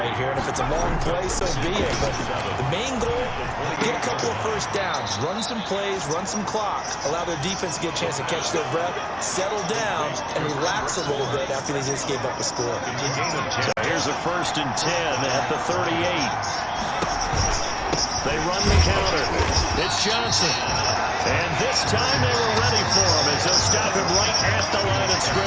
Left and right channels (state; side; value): identical; both; correlation 1.00